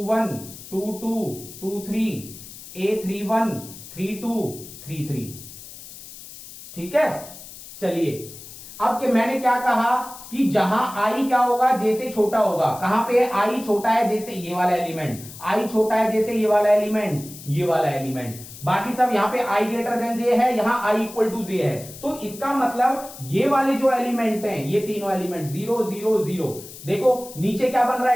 22 23 a31 32 33। ठीक है, चलिए अब कि मैंने क्या कहा कि जहां आई क्या होगा, जैसे छोटा होगा। कहां पे आई छोटा है, जैसे ये वाला एलिमेंट, आई छोटा है जैसे ये वाला एलिमेंट, ये वाला एलिमेंट। बाकी सब यहां पे आई ग्रेटर देन जे है, यहां आई इक्वल टू जे है। तो इसका मतलब ये वाले जो एलिमेंट हैं, ये तीनों एलिमेंट 0 0 0। देखो नीचे क्या बन रहा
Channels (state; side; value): noise; left; hiss, 15 dB below the sound